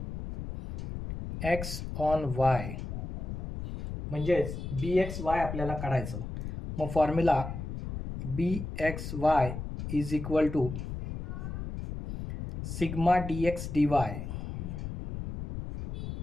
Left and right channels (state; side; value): noise; left; rumble, 6 dB below the sound